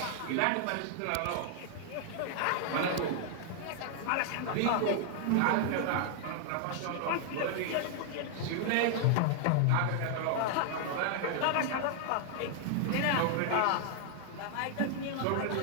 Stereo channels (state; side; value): different; both; correlation 0.00